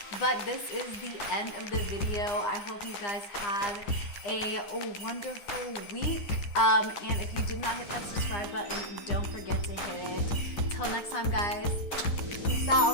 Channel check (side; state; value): right; late; 9.9 ms